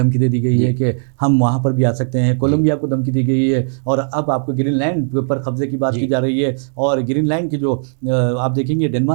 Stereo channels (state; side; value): silent; left; digital silence